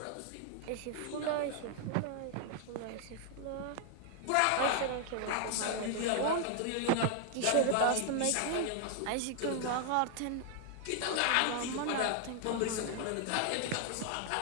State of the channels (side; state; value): both; different; correlation 0.00